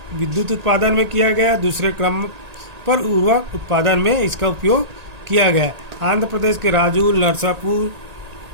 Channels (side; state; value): left; late; 1.8 ms